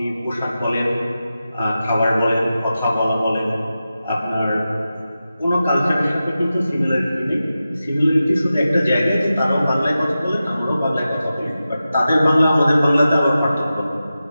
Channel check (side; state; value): both; inverted; correlation -0.93